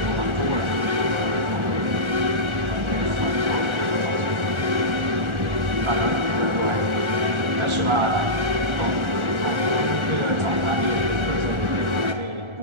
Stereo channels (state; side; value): late; left; 1.4 ms